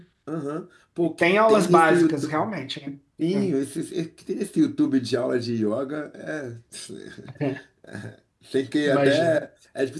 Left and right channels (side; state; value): both; identical; correlation 1.00